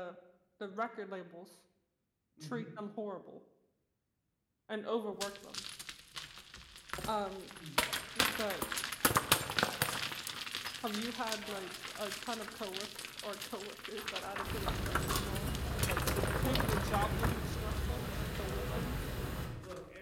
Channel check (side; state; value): both; identical; correlation 1.00